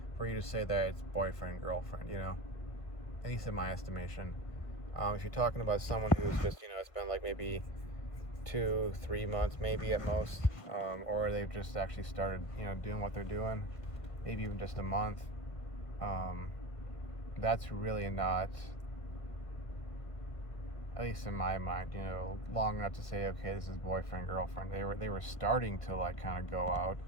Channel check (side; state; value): right; late; 1.5 ms